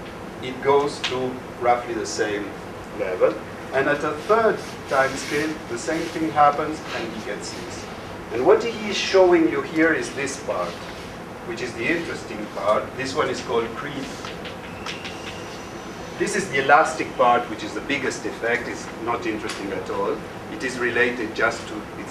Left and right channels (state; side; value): identical; both; correlation 1.00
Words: it goes to roughly the same level. And at a third time scale, the same thing happens and he gets this. And what he is showing you here is this part, which is the interesting part. This one is called creep. This is the elastic part, which is the biggest effect. It's not interesting at all. It is related just to,